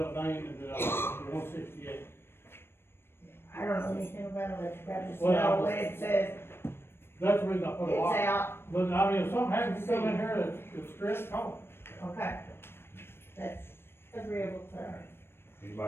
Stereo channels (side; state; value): right; late; 0.11 ms